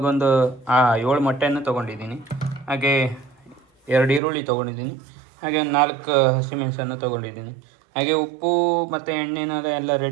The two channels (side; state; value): left; drops out; at 4.2 s